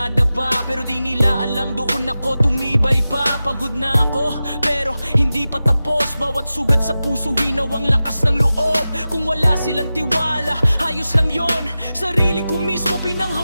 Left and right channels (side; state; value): both; inverted; correlation -0.94